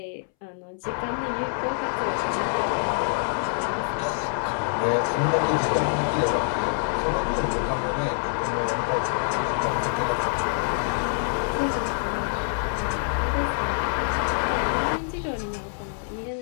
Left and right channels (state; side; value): silent; right; 61 dB below the other